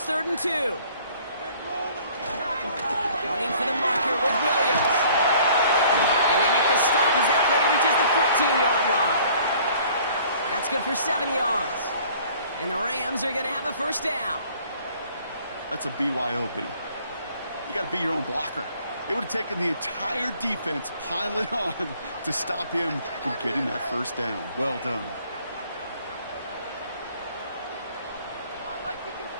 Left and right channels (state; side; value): inverted; both; correlation -0.55